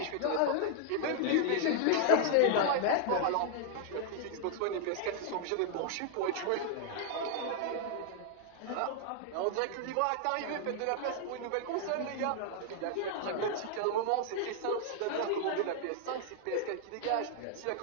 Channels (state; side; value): different; both; correlation 0.00